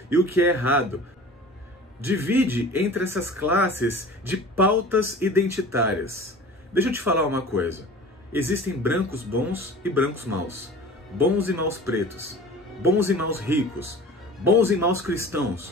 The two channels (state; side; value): normal; both; correlation 0.40